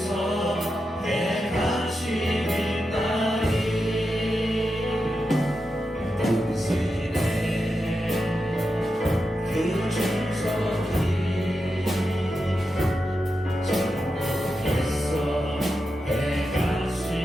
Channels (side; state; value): both; normal; correlation 0.88